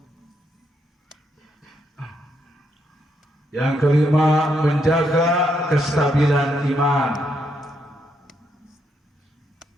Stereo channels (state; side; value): normal; both; correlation 0.77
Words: Yang kelima, menjaga kestabilan iman.